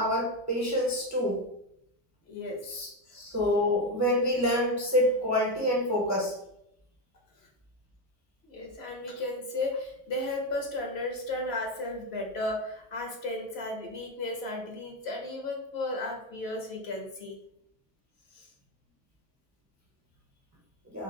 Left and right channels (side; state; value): both; normal; correlation 0.10